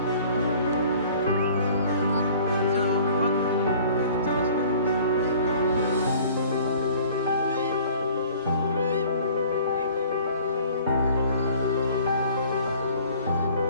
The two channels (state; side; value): inverted; both; correlation -0.51